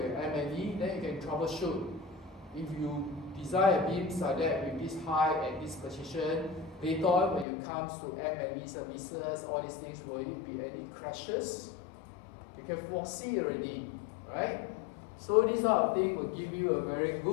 M&E, then you can troubleshoot. If you design a beam like that with this height and this position, later on when it comes to M&E services, all these things, will it be any crashes? can foresee already, right? So this sort of thing will give you a very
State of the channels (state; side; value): drops out; right; at 7.5 s